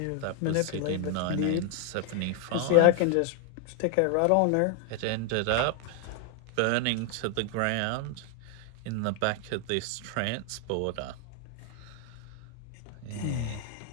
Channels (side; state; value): both; different; correlation 0.00